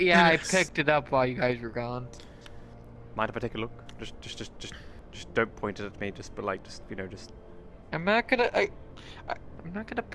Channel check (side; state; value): both; identical; correlation 1.00